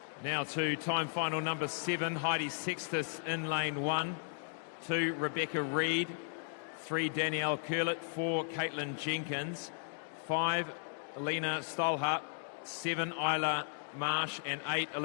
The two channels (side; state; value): right; silent; digital silence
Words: Now to time final number 7, Heidi Sextus in lane 1. 2, Rebecca Reid. 3, Danielle Curlett. 4, Caitlin Jenkins. 5, Alina Stolhart. 7, Isla Marsh. And 8,